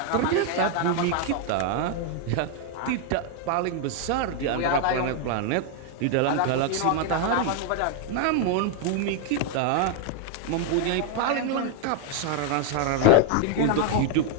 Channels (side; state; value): both; different; correlation 0.00